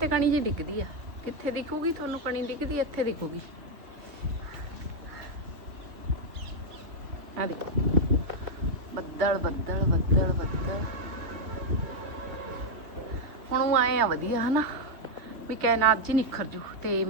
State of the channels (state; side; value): late; left; 2.7 ms